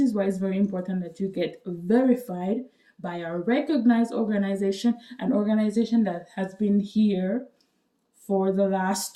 why it's very important that you get verified by a recognized organization, an organization that has been here for the last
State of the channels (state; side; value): identical; both; correlation 1.00